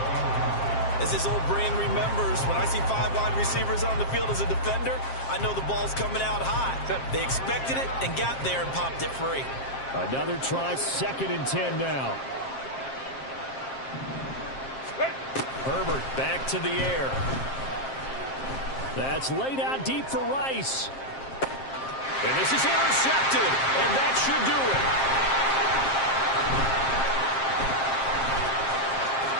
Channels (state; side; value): late; right; 7.5 ms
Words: As his old brain remembers, when I see 5 wide receivers on the field as a defender, I know the ball's coming out high. They expected it and got there and popped it free. Another try, 2nd and 10 now. Herbert back to the air. That's laid out deep for Rice. And this is intercepted, and that should do it.